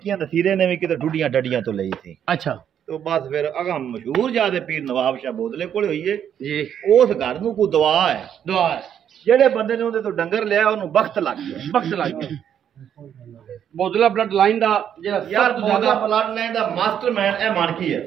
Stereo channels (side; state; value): left; quieter; 9.2 dB